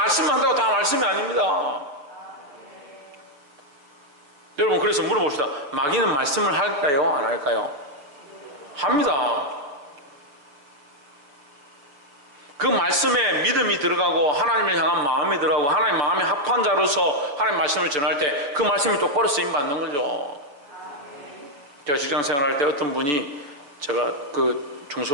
다 말씀이 아닙니다. 여러분, 그래서 물어봅시다. 마귀는 말씀을 할까요? 안 할까요? 합니다. 그 말씀에 믿음이 들어가고 하나님을 향한 마음이 들어가고 하나님 마음에 합한 자로서 하나님 말씀을 전할 때 그 말씀이 똑바로 쓰임받는 거죠. 제가 직장 생활할 때 어떤 분이, 제가 그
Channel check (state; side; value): late; left; 6.9 ms